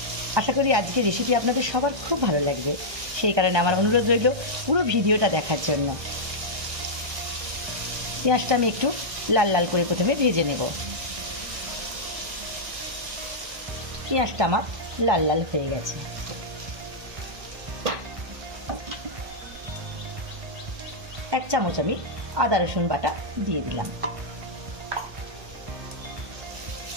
আশা করি আজকের রেসিপি আপনাদের সবার খুব ভালো লাগবে। সেই কারণে আমার অনুরোধ রইল পুরো ভিডিওটা দেখার জন্য। পেঁয়াজটা আমি একটু লাল লাল করে প্রথমে ভেজে নেব। পেঁয়াজটা আমার লাল লাল হয়ে গেছে। এক চামচ আমি আদা রসুন বাটা দিয়ে দিলাম।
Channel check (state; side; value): late; left; 1.2 ms